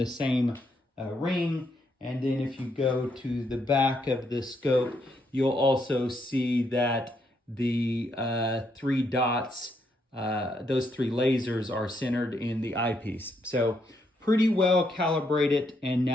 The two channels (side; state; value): both; normal; correlation 0.76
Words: same ring. And then if you go to the back of the scope, you'll also see that the three dots, those three lasers are centered in the eyepiece. So pretty well calibrated, and